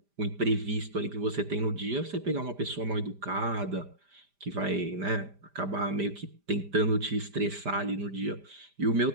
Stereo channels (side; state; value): left; late; 5.0 ms